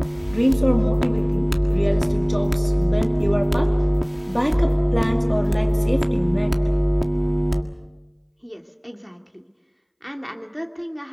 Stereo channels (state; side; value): identical; both; correlation 1.00